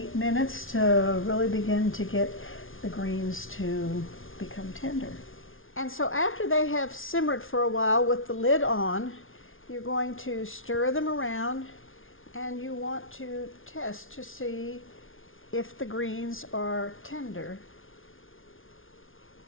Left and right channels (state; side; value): late; right; 0.58 ms